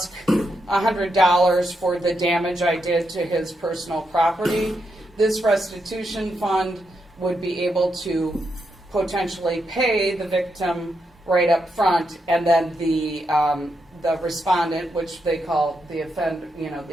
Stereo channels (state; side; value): normal; both; correlation 0.83